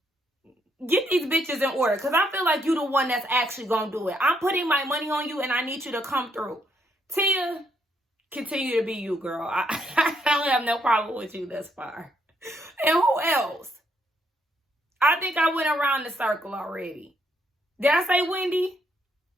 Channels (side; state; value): both; normal; correlation 0.73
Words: get these bitches in order. Because I feel like you the one that's actually going to do it. I'm putting my money on you and I need you to come through. Tia, continue to be you, girl. I don't have no problem with you thus far. And who else? I think I went around the circle already. Did I say Wendy?